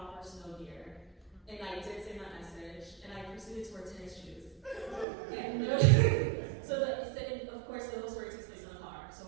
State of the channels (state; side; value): drops out; left; at 5.1 s